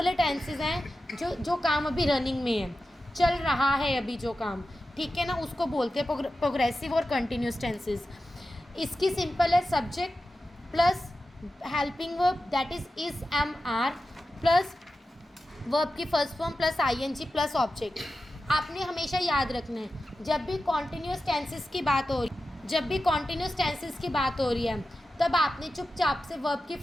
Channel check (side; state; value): both; normal; correlation 0.93